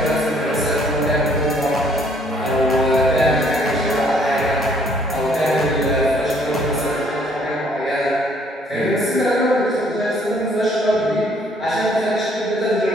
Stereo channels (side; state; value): both; normal; correlation 0.63